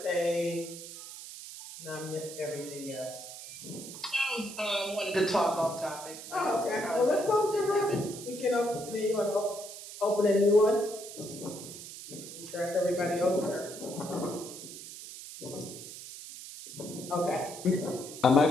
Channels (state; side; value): noise; right; hiss, 12 dB below the sound